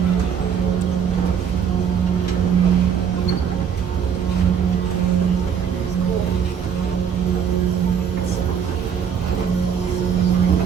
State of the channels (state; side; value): quieter; left; 7.6 dB